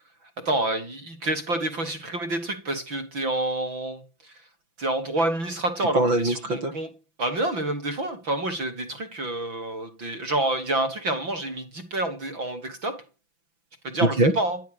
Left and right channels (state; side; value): late; left; 6.0 ms